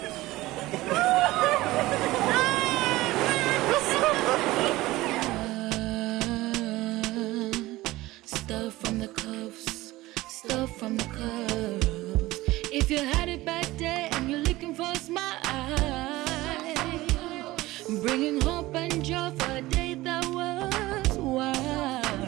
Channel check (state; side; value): quieter; left; 18.4 dB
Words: Stuff from the cuffs, stuff from the cuffs. If you had it back there and you're looking for a smile, bringing hope and joy for a day that was